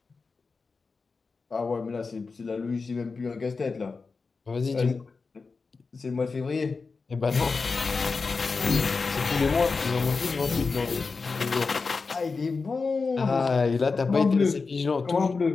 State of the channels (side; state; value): right; quieter; 4.4 dB